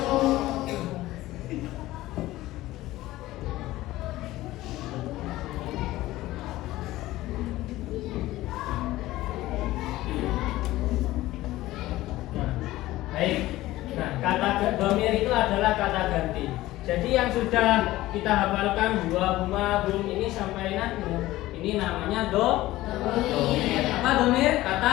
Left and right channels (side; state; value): right; quieter; 16.8 dB